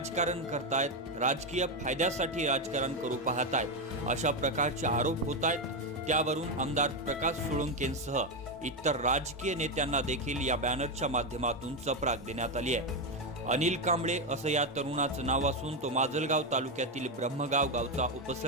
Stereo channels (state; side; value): normal; both; correlation 0.09